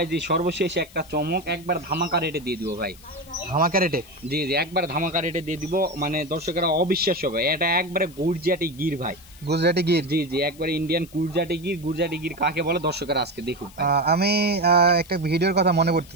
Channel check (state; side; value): noise; left; hiss, 23 dB below the sound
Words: জি, সর্বশেষ একটা চমক, একবার ধামাকা রেটে দিয়ে দিব ভাই। ধামাকা রেটে? জি জি, একবার ধামাকা রেটে দিয়ে দিব, মানে দর্শকেরা অবিশ্বাস্য হবে। এটা একবারে গুজরাটি গির ভাই। গুজরাটি গির? জি জি, একবারে ইন্ডিয়ান গুজরাটি গির। গুজরাটি গির কাকে বলে দর্শকেরা আজকে দেখুক ভাই। আমি একটা ভিডিওর কথা মনে